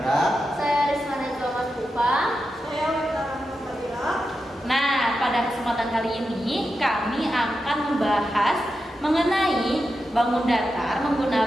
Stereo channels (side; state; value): both; normal; correlation 0.89